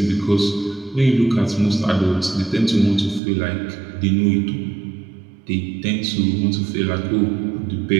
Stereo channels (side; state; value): left; drops out; at 3.2 s